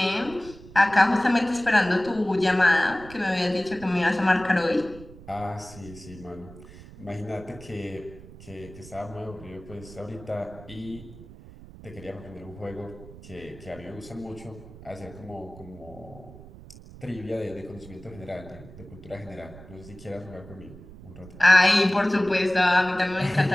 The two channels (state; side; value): noise; right; rumble, 18 dB below the sound